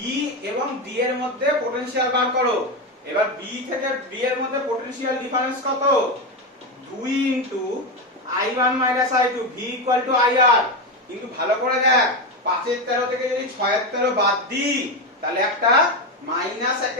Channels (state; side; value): normal; both; correlation 0.13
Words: এবং D এর মধ্যে পোটেনশিয়াল বার করো। এবার B থেকে D এর মধ্যে পোটেনশিয়াল ডিফারেন্স কত? 2 into I1 - I2, V = IR। কিন্তু ভালো করে দেখ, 5/13 থেকে যদি 6/13 বাদ দিই, তাহলে একটা মাইনাস